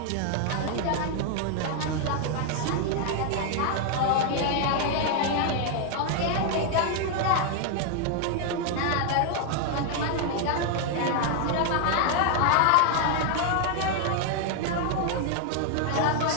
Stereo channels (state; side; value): different; both; correlation 0.00